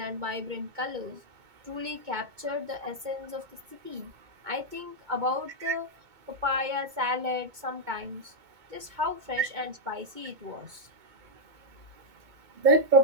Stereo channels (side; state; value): left; late; 2.2 ms